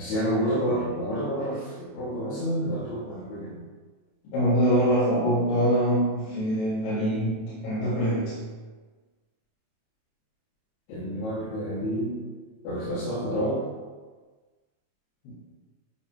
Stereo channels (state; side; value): late; right; 28 ms